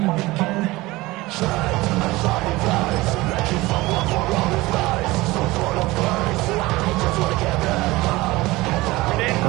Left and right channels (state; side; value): quieter; left; 20.2 dB